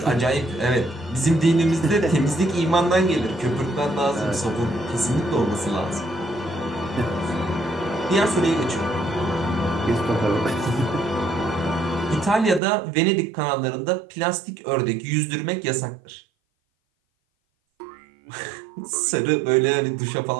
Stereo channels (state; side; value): drops out; left; at 12.6 s